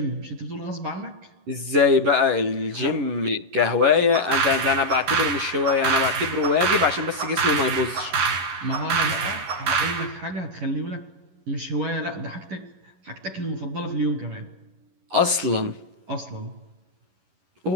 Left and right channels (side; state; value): left; late; 11 ms